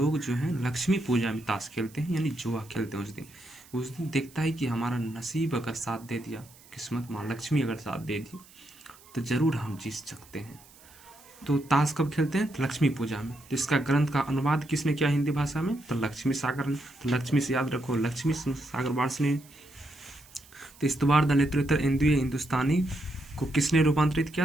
जो है लक्ष्मी पूजा में ताश खेलते हैं, यानी जुआ खेलते हैं। उस दिन देखता है कि हमारा नसीब अगर साथ दे दिया, किस्मत माँ लक्ष्मी अगर साथ दे दी तो जरूर हम जीत सकते हैं। तो ताश कब खेलते हैं? तो लक्ष्मी पूजा में। तो इसका ग्रंथ का अनुवाद किसने किया हिंदी भाषा में? तो लक्ष्मी सागर ने। तो लक्ष्मी से याद रखो, लक्ष्मी सागर वार्ष्णेय। तो इस्तवार दालित्रोत्तर एंदुए हिंदुस्तानी को किसने रूपांतरित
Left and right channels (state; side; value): noise; right; hiss, 24 dB below the sound